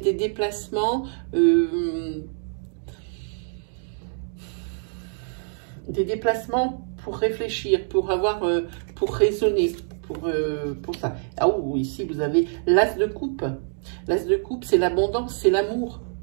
des déplacements... pour réfléchir, pour avoir, pour raisonner, pour ça. Ah oui, ici vous avez l'as de coupe. L'as de coupe, c'est l'abondance, c'est l'amour.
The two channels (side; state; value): left; silent; digital silence